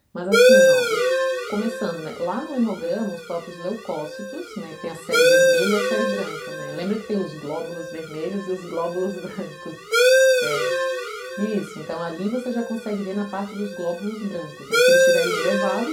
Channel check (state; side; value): identical; both; correlation 1.00